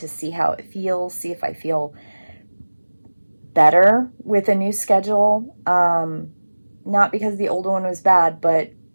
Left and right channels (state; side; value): inverted; both; correlation -1.00